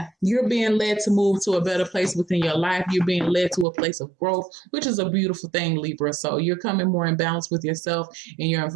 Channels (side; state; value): left; drops out; at 3.7 s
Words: you're being led to move to a better place within your life. You're being led to a place of growth, which is a beautiful thing, Libra. So you're coming more in balance with yourself, and your